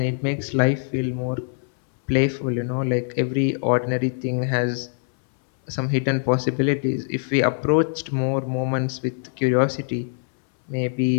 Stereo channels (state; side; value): silent; right; 63 dB below the other